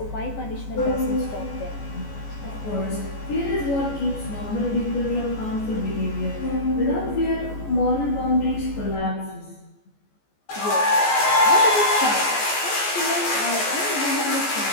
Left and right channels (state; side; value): late; right; 14 ms